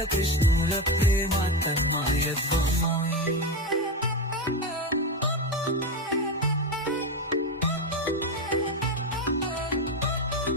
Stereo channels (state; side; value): normal; both; correlation 0.15